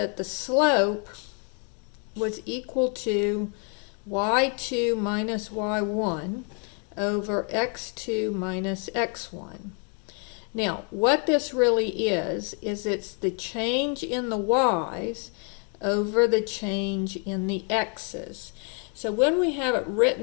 the slope was equal to y2 minus y1 over x2 minus x1. Now, what this really is it's the change in the y's over the change in the x's. So when we have it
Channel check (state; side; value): quieter; right; 39.8 dB